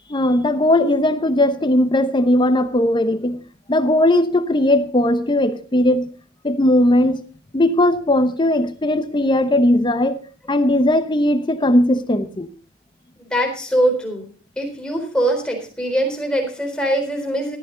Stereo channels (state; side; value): normal; both; correlation 0.65